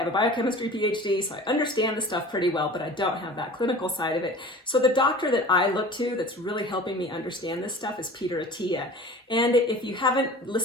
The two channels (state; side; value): normal; both; correlation 0.40